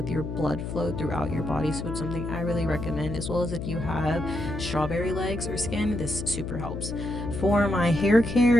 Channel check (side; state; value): left; noise; hum, 6 dB below the sound